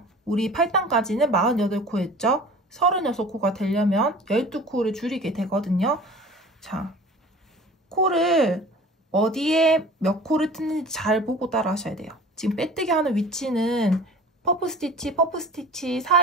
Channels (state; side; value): normal; both; correlation 0.42